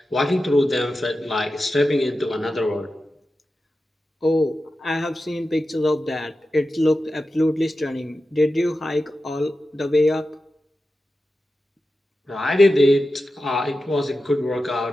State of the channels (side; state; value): both; normal; correlation 0.92